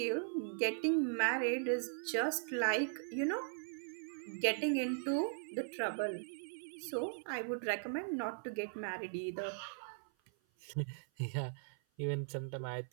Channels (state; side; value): silent; left; 52 dB below the other